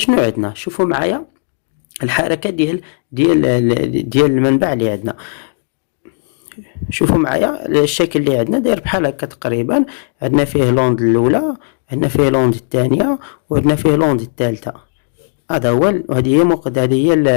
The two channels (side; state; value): right; silent; digital silence